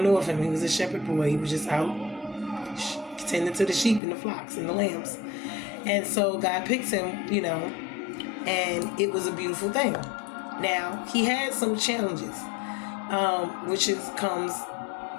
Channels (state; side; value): drops out; right; at 4.0 s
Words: knew of him. He was a shepherd boy. He was just out tending to the sheep and the flocks and the lambs. And so God picks him, and it was a beautiful thing. Now, he had some challenges, which comes